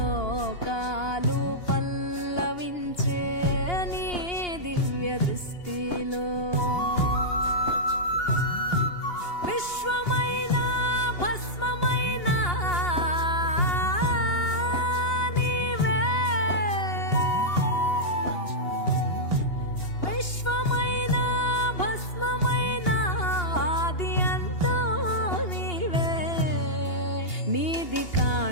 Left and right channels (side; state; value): right; late; 2.8 ms